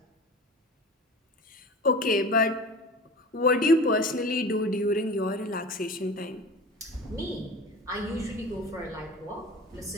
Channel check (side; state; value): both; normal; correlation 0.35